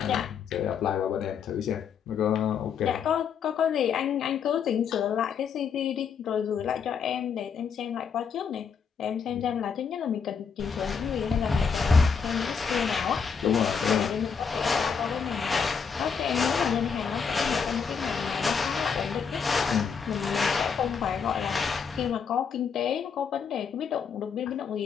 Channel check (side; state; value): right; quieter; 6.4 dB